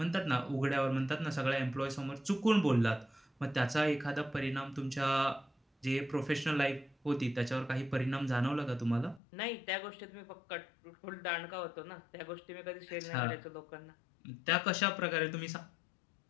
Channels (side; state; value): right; drops out; at 9.2 s